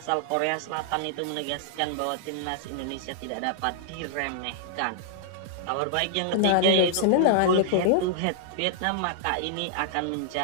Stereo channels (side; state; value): both; different; correlation -0.01